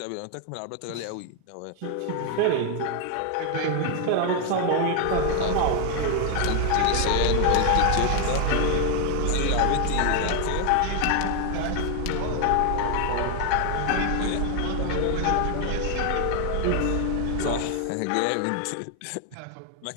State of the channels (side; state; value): both; different; correlation 0.01